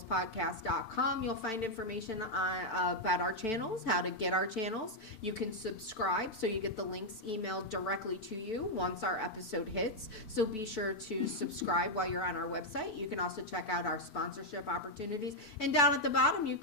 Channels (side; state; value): right; late; 4.5 ms